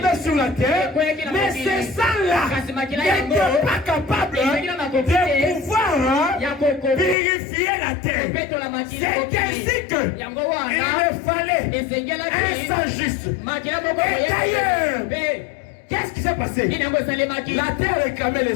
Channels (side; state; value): right; drops out; at 7.2 s